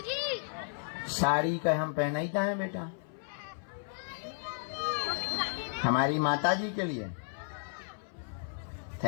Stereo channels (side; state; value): right; silent; 55 dB below the other